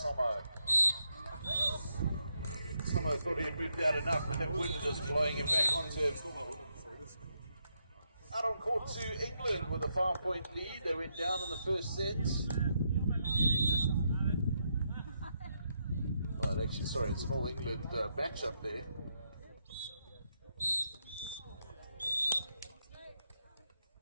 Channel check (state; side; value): inverted; both; correlation -0.80